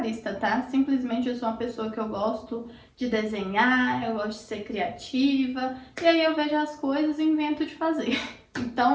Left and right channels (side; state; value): both; identical; correlation 1.00